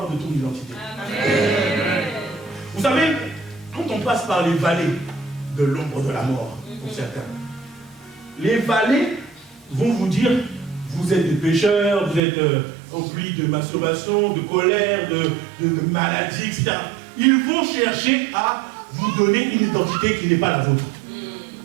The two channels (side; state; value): left; drops out; at 12.2 s